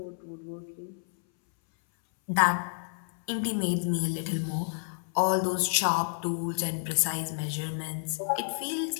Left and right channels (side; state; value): right; silent; 58 dB below the other